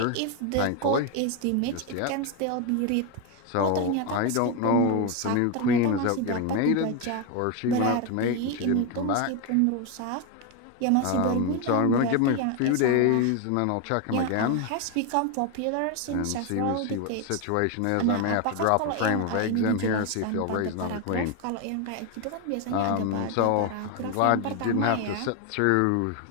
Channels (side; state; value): both; different; correlation 0.02